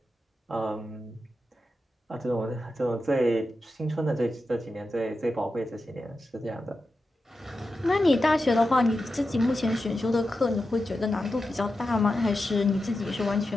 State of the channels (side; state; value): both; normal; correlation 0.90